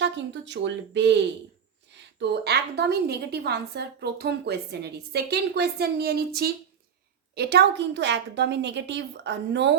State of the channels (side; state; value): left; quieter; 7.7 dB